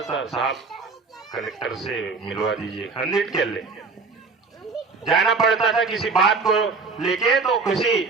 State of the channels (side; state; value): left; quieter; 4.5 dB